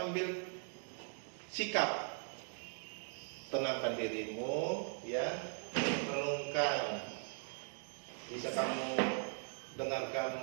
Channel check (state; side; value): silent; left; 51 dB below the other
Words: sikap. Tenangkan dirimu, ya, renungkan. Bisa kamu